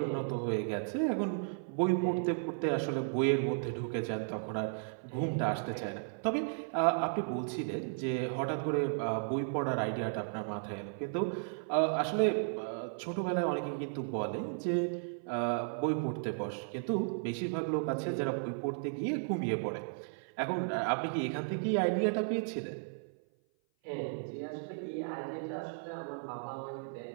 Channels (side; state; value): left; silent; 55 dB below the other